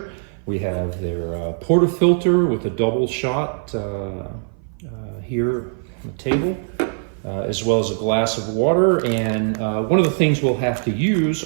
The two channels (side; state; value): left; silent; 57 dB below the other